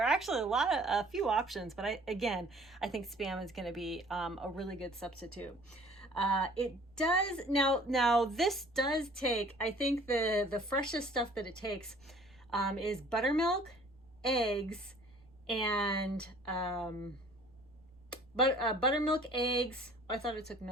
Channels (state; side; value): noise; right; rumble, 29 dB below the sound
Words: are actually a few options, but I think Spam is going to be a really good substitute. It does now this does take, I think the freshest stuff that it takes is buttermilk, eggs, and buttermilk, eggs. I thought it took